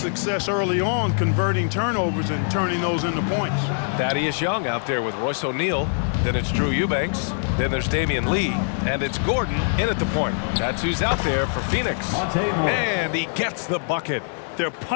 early on converting turnovers and turning those into points. Thaddeus Young out there with Royce O'Neal. Then it's Drew Eubanks. Then there's Damian Lee. And it's Gordon in at the point. That's who's out there for Phoenix. And he gets the bucket. They're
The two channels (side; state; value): right; silent; digital silence